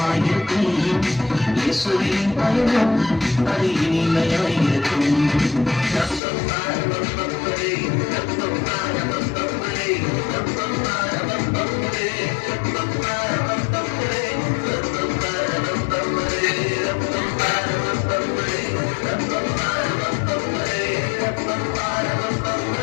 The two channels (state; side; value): drops out; right; at 6.2 s